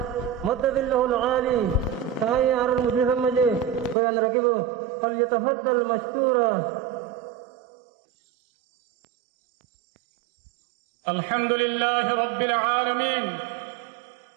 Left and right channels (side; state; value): left; drops out; at 4.0 s